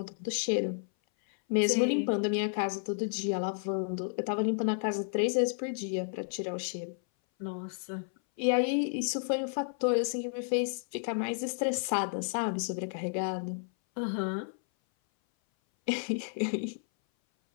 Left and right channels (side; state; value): right; silent; 57 dB below the other